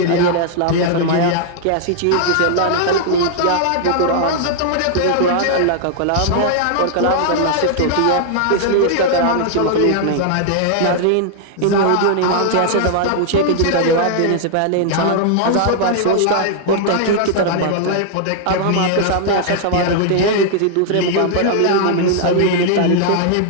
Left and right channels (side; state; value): both; different; correlation -0.01